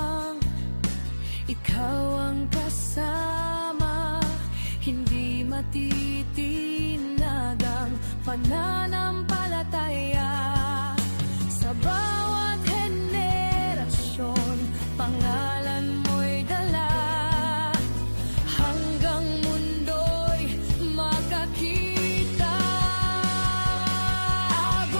ikaw ang kasama. Hindi matitinag ang pananampalataya. Sa bawat henerasyon, pangalan mo'y dala. Hanggang mundo'y makakita.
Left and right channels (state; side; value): inverted; both; correlation -1.00